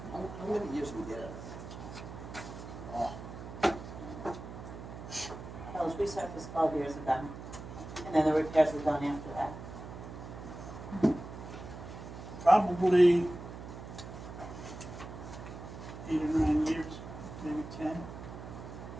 How many years we get out of that? That was resurfaced 12 years ago, and then the repairs were done after that. Probably 8 or 9 years, maybe 10.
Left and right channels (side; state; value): right; noise; hum, 11 dB below the sound